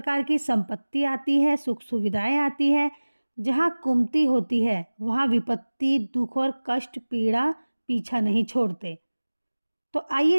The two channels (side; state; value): both; inverted; correlation -1.00